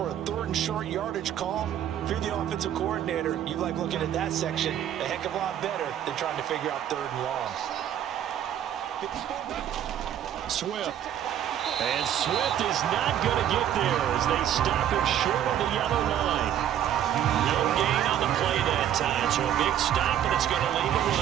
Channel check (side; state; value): left; quieter; 10.5 dB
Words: a 3rd and short yardage call. If you're the offensive coordinator, you like looking at that section a heck of a lot better than trying to figure out 3rd and long. Swift. And Swift is not going to get there as they stop it short of the yellow line. No gain on the play that time, so a big stop, and it's going to leave it with